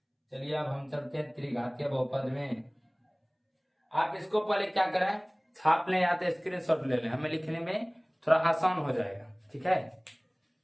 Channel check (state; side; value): identical; both; correlation 1.00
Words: चलिए अब हम चलते हैं त्रिघातीय बहुपद में। आप इसको पहले क्या करें, छाप लें या तो स्क्रीनशॉट ले लें, हमें लिखने में थोड़ा आसान हो जाएगा। ठीक है,